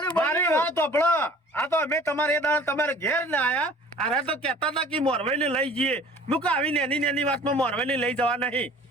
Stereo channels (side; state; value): both; normal; correlation 0.48